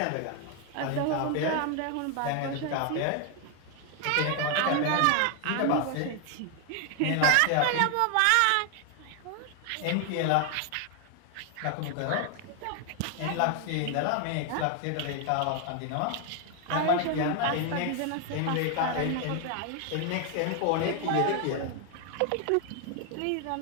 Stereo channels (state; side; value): different; both; correlation 0.00